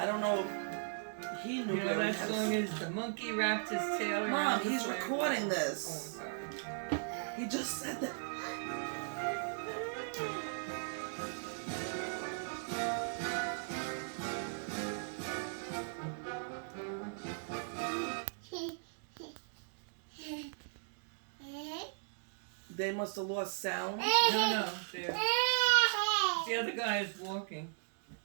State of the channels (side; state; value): left; silent; digital silence